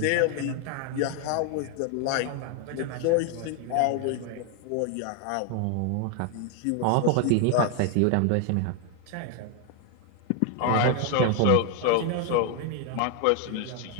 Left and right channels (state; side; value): different; both; correlation 0.01